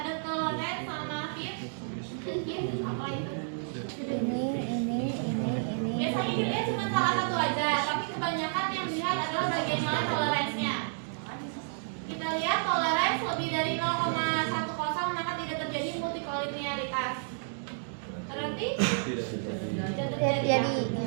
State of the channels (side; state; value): left; silent; digital silence